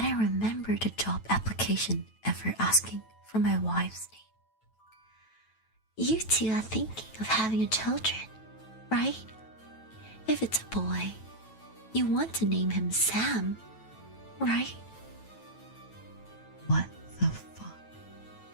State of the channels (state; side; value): late; right; 9.1 ms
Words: didn't remember the job application ever asking for my wife's name. You two are thinking of having children, right? If it's a boy, you want to name him Sam, right? What the fuck?